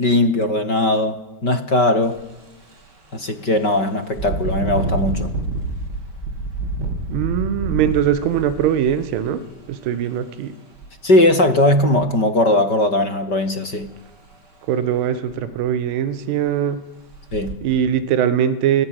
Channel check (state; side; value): late; right; 5.2 ms